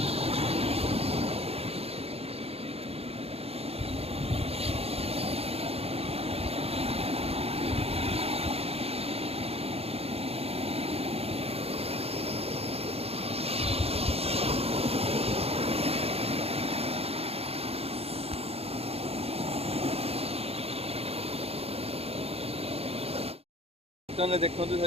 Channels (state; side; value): late; left; 0.29 ms